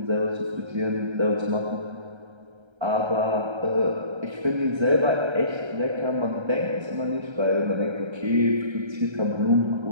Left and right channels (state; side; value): late; left; 1.3 ms